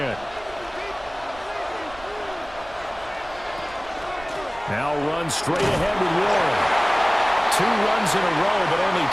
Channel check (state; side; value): noise; right; rumble, 20 dB below the sound